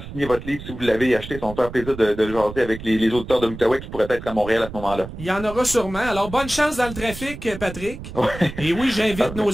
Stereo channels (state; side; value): noise; right; rumble, 12 dB below the sound